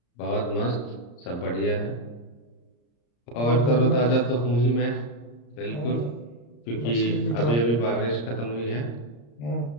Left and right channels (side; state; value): right; late; 34 ms